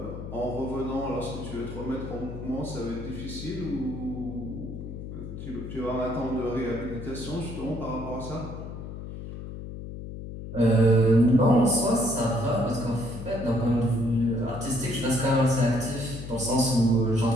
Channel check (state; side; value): noise; left; hum, 9 dB below the sound